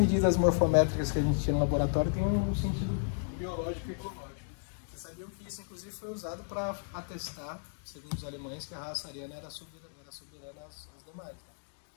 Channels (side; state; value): right; silent; digital silence